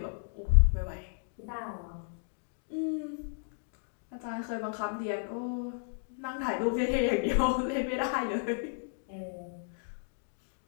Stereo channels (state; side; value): silent; right; digital silence